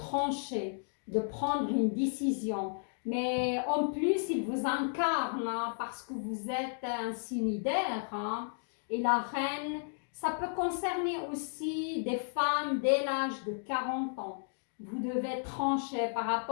de prendre une décision. Mais en plus, il vous incarne hein, parce que vous êtes un signe d'air. Hein, et la reine, ça peut concerner aussi des femmes dès l'âge de 40 ans. Vous devez trancher par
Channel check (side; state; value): right; silent; digital silence